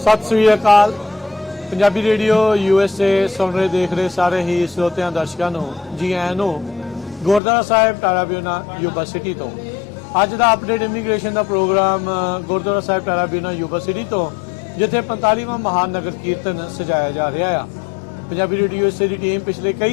ਸਤਿ ਸ੍ਰੀ ਅਕਾਲ। Punjabi radio USA ਸੁਣ ਰਹੇ ਦੇਖ ਰਹੇ ਸਾਰੇ ਹੀ ਸਰੋਤਿਆਂ ਦਰਸ਼ਕਾਂ ਨੂੰ ਜੀ ਆਇਆਂ ਨੂੰ ਗੁਰਦੁਆਰਾ ਸਾਹਿਬ ਟਾਰਾਬਿਊਨਾ ਯੂਬਾ ਸਿਟੀ ਤੋਂ ਅੱਜ ਦਾ ਅਪਡੇਟ ਇਮੀਗ੍ਰੇਸ਼ਨ ਦਾ ਪ੍ਰੋਗਰਾਮ ਗੁਰਦੁਆਰਾ ਸਾਹਿਬ ਟਾਰਾਬਿਊਨਾ ਯੂਬਾ ਸਿਟੀ ਤੋਂ ਜਿੱਥੇ 45ਵਾਂ ਮਹਾਨ ਨਗਰ ਕੀਰਤਨ ਸਜਾਇਆ ਜਾ ਰਿਹਾ ਆ। ਪੰਜਾਬੀ ਰੇਡੀਓ USA ਦੀ ਟੀਮ ਪਿਛਲੇ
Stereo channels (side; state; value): right; drops out; at 7.4 s